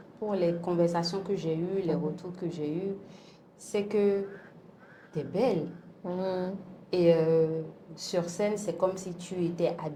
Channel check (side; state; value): both; identical; correlation 1.00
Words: les conversations que j'ai eues, les retours que j'ai eus, c'est que tu es belle. Et sur scène, c'est comme si tu étais